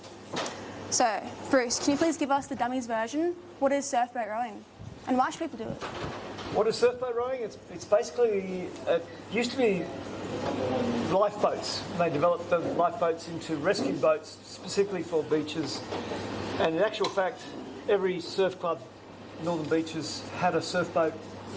So, Bruce, can you please give us the dummies version? What is surfboat rowing? And why should people do it? What is surfboat rowing? It's basically, it used to be lifeboats. They developed the lifeboats into rescue boats specifically for beaches. And in actual fact, every surf club, Northern Beaches, had a surfboat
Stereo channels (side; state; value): both; identical; correlation 1.00